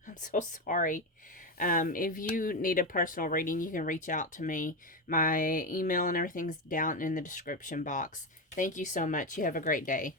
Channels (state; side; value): normal; both; correlation 0.14